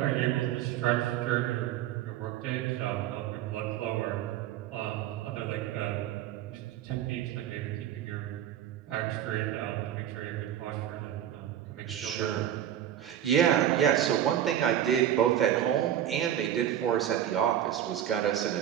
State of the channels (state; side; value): quieter; left; 11.0 dB